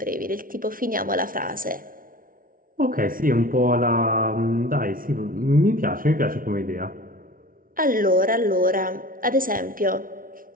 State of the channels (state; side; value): late; left; 0.41 ms